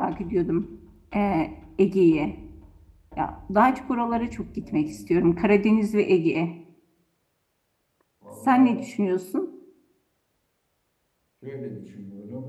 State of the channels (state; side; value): identical; both; correlation 1.00